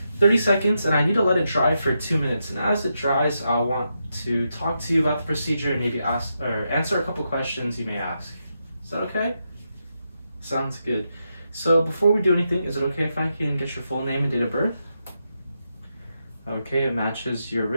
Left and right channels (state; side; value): inverted; both; correlation -0.84